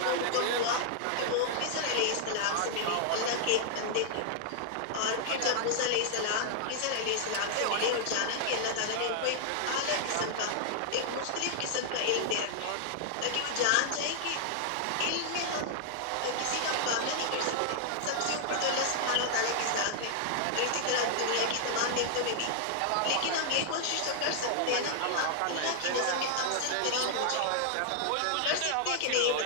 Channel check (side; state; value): both; different; correlation 0.00